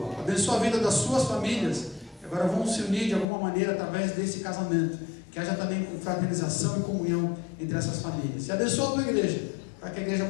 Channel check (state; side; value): drops out; right; at 3.2 s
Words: Abençoa a vida das suas famílias, que agora vão se unir de alguma maneira através desse casamento, que haja também fraternização e comunhão entre essas famílias. E abençoa a tua igreja, para que a igreja